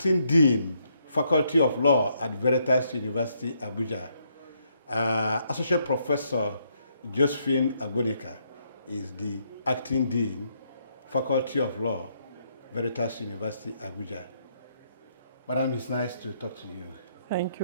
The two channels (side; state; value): both; inverted; correlation -0.74